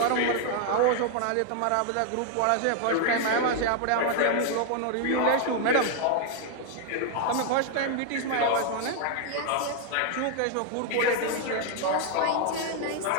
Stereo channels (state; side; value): different; both; correlation 0.00